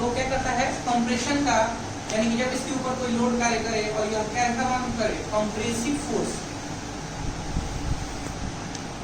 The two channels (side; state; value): both; identical; correlation 1.00